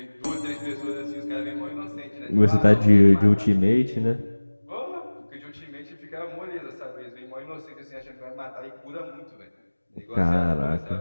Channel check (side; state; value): both; inverted; correlation -1.00